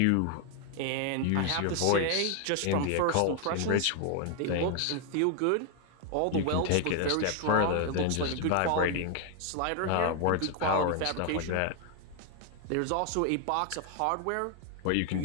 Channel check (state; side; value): different; both; correlation 0.00